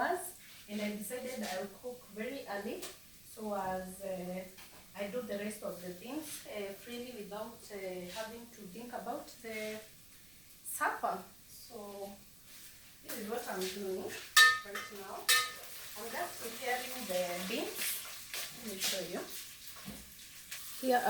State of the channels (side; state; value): right; noise; rumble, 22 dB below the sound